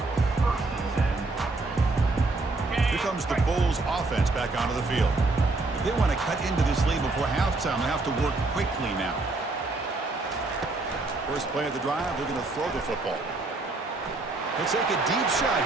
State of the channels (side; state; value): left; quieter; 3.3 dB